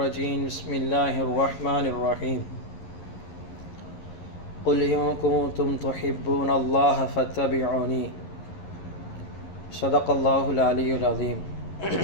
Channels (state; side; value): late; right; 11 ms